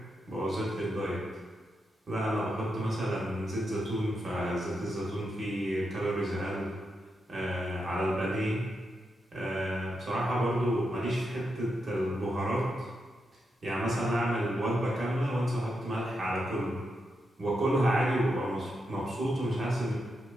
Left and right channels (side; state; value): both; normal; correlation 0.85